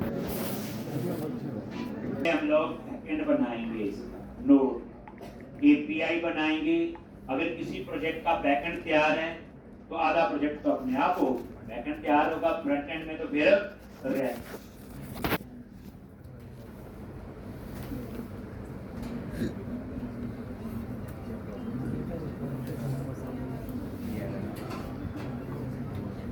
हम लोग बैकएंड बनाएंगे, नोड API बनाएंगे। अगर किसी प्रोजेक्ट का बैकएंड तैयार है तो आधा प्रोजेक्ट तो अपने आप हो, बैकएंड तैयार होगा, फ्रंट एंड में तो फिर रहे।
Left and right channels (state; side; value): identical; both; correlation 1.00